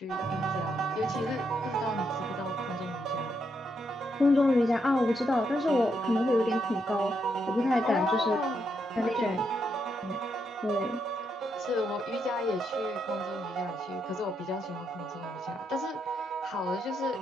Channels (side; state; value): both; normal; correlation 0.79